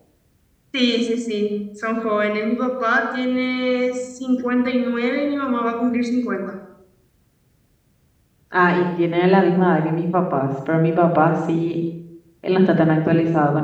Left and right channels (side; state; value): both; identical; correlation 1.00